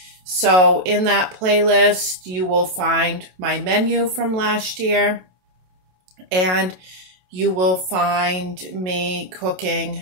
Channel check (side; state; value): left; late; 27 ms